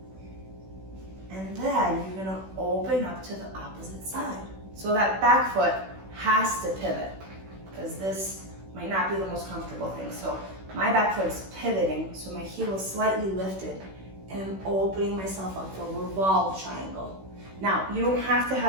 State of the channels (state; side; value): late; left; 16 ms